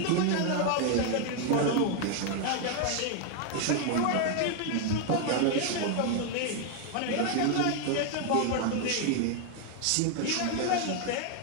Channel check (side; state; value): both; different; correlation 0.01